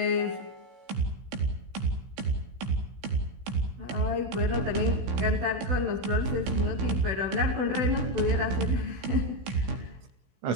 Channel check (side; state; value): left; late; 16 ms